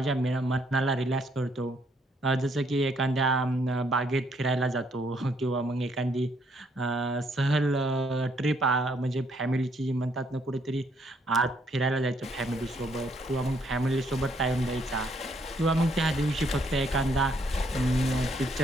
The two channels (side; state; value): both; normal; correlation 0.70